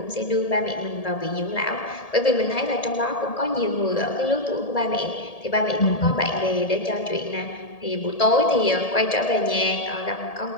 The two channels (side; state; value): right; late; 1.8 ms